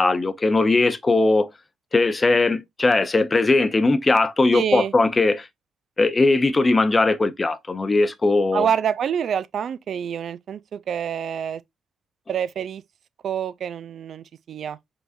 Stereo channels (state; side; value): normal; both; correlation 0.90